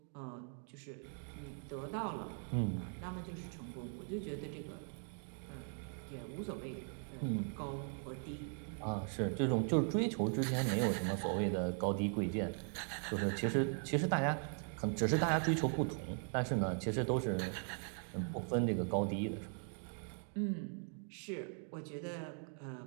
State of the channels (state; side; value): silent; left; 51 dB below the other